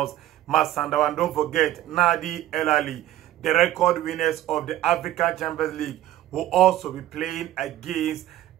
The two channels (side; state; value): left; quieter; 13.7 dB